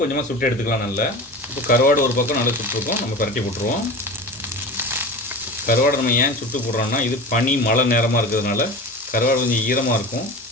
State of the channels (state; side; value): normal; both; correlation 0.32